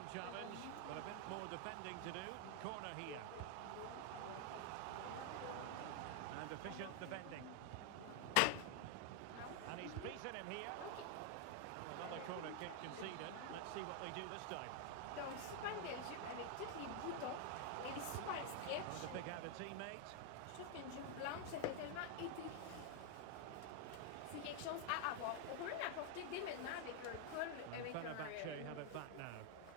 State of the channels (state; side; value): different; both; correlation 0.00